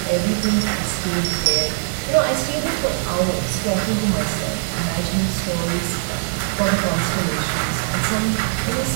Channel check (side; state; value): left; silent; 61 dB below the other